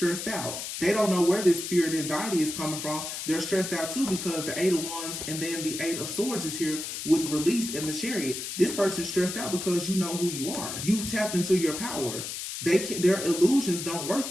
out. They don't know where this fear and anxiety is coming from. They're stressed out too because the 8 of Wands and then the 8 of Swords is here with release in the Chariot. This person's stressed out because you know who you are. You've tapped into your power. Their illusions don't work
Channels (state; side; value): noise; left; hiss, 6 dB below the sound